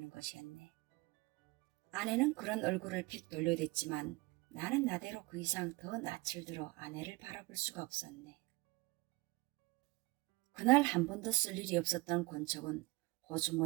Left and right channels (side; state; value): left; quieter; 23.9 dB